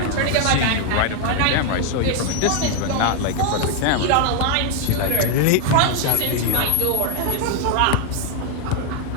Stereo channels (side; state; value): both; different; correlation 0.00